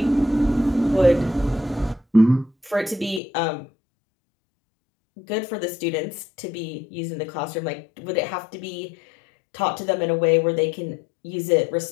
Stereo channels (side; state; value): right; drops out; at 3.2 s